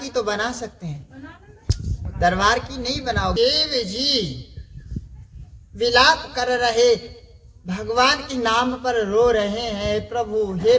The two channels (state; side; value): identical; both; correlation 1.00